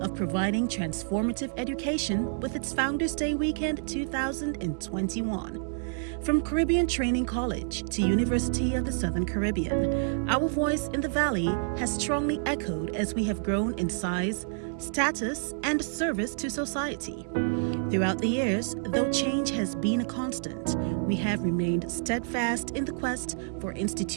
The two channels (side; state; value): left; silent; digital silence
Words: providing transformative education with its Founders Day weekend 2021. From Caribbean Training College to University of the Southern Caribbean, our voice in the Valley has strongly echoed as we have grown in size, status, and service to society. Throughout the years, though change has been a constant, we have remained steadfast in the quest for